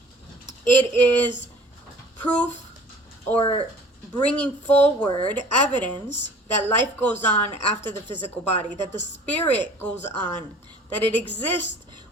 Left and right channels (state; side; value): normal; both; correlation 0.48